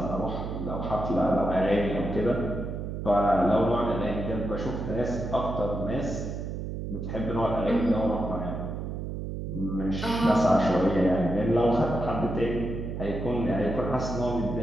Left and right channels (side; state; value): right; noise; hum, 5 dB below the sound